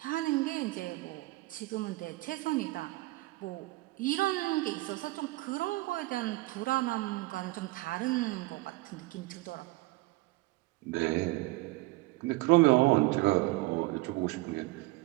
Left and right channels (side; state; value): left; quieter; 21.1 dB